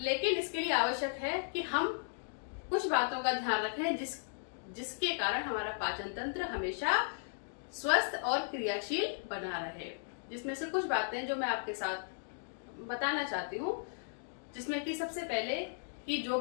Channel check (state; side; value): silent; right; digital silence